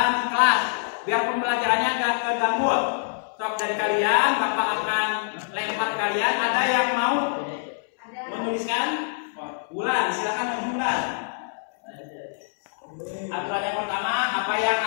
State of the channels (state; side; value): silent; right; 62 dB below the other